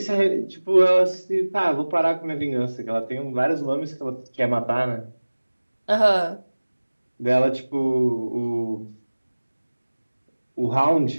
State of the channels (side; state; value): both; inverted; correlation -1.00